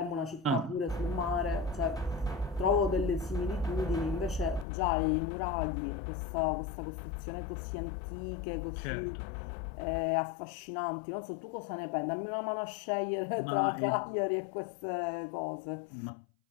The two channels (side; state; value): right; drops out; at 4.7 s